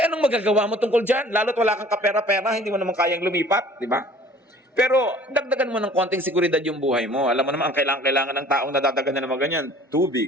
anong magagawa mo tungkol dyan? Lalo't wala kang kapera-pera, hindi mo naman kayang lumipat, di ba? Pero dagdagan mo ng konting seguridad yung buhay mo. Alam mo naman, ang kailangan ng taong nadadagan na naman ganyan,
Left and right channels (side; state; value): both; normal; correlation 0.50